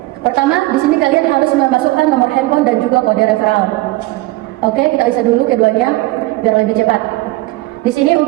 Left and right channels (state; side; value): quieter; left; 19.7 dB